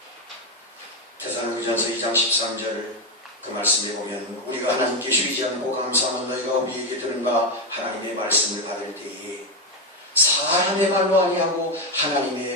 데살로니가전서 2장 13절 그 말씀에 보면, 우리가 하나님께 쉬지 않고 감사하는 너희가 우리에게 들은 바 하나님의 말씀을 받을 때에 사람의 말로 아니하고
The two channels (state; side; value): normal; both; correlation 0.08